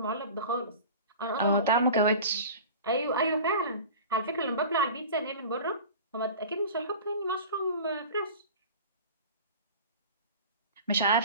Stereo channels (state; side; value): inverted; both; correlation -0.37